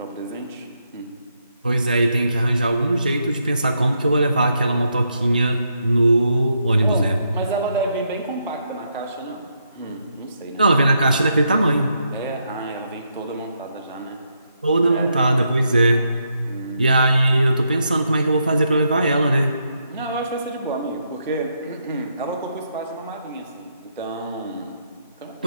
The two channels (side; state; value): both; inverted; correlation -0.79